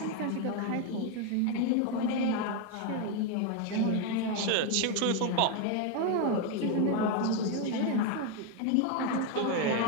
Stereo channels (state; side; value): different; both; correlation 0.01